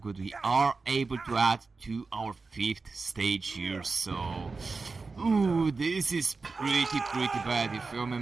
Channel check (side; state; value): left; quieter; 4.2 dB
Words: We are able to add to our 5th stage here, so ooh, this is pretty bad, you feel me,